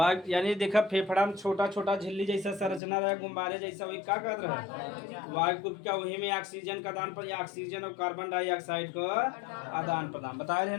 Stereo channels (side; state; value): right; drops out; at 2.8 s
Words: यानी देखा फेफड़ा में छोटा छोटा झिल्ली जैसा संरचना रहा, गुब्बारे जैसा, वही क्या कहते रहे वायु को क्या, वही में ऑक्सीजन का आदान प्रदान, ऑक्सीजन और कार्बन डाइऑक्साइड का आदान प्रदान बताए रहे